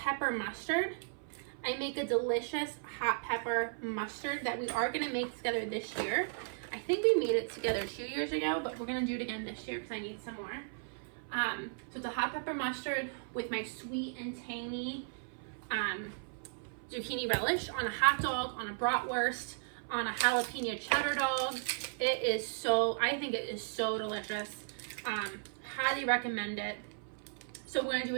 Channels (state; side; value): silent; left; 54 dB below the other